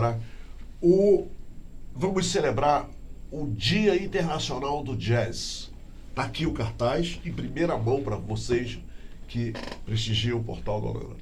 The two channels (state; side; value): identical; both; correlation 1.00